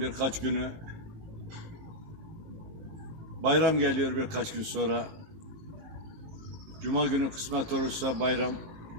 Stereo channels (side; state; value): left; late; 18 ms